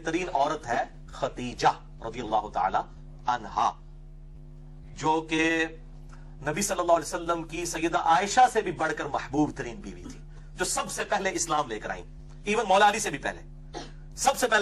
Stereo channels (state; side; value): identical; both; correlation 1.00